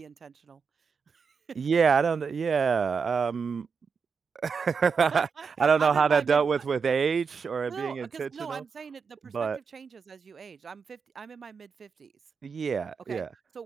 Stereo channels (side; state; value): left; quieter; 5.7 dB